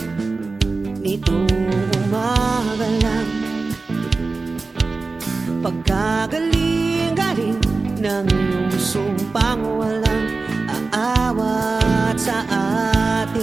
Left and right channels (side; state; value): left; quieter; 3.8 dB